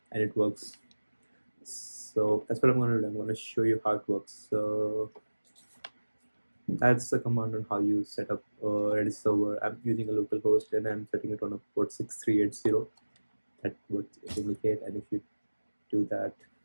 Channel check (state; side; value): inverted; both; correlation -1.00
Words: and it works. So that's what I'm going to do. I'm going to show you how it works. So that's the command on how you set up a Redis server. I'm using a local host and I'm setting it on a port 6380. That would indicate, and if you do that,